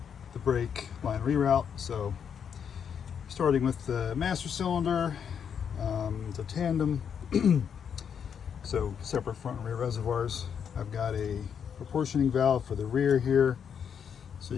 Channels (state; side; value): quieter; right; 7.6 dB